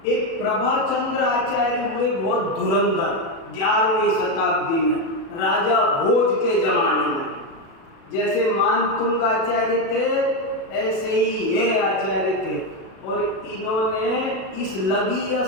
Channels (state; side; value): late; right; 36 ms